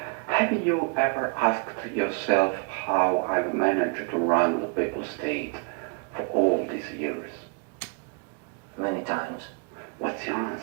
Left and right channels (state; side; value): quieter; left; 38.3 dB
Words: have you ever asked yourself how I've managed to run the papal state for all these years? Many times. What's your